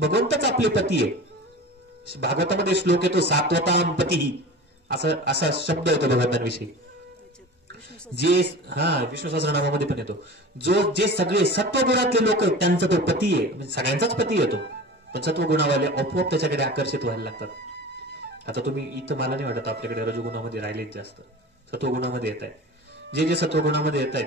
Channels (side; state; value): both; normal; correlation 0.35